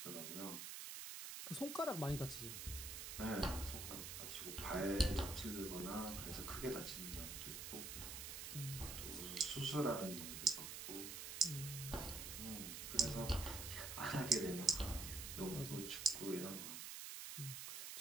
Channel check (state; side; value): noise; right; hiss, 6 dB below the sound